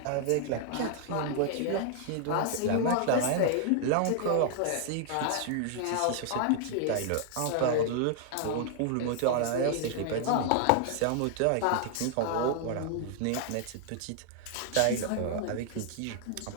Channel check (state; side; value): different; both; correlation 0.00